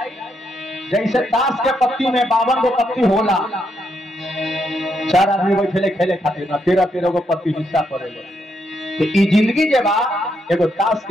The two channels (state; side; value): normal; both; correlation 0.78